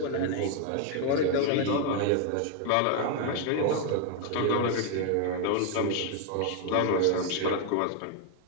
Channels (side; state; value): both; different; correlation 0.00